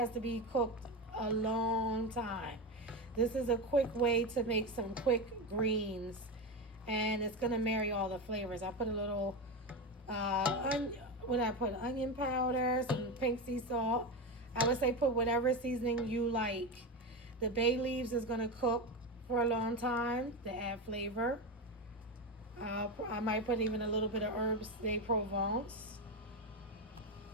to be cooked a long time. This is a quick way to make some quick greens, and it's gonna marry all the flavors. I put a little what I put, onion powder, some pink sea salt. I would say put whatever seasoning you like. The bay leaves is gonna cook for a long time to add flavor. I might put even a little bit of herbs de Provence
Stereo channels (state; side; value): normal; both; correlation 0.17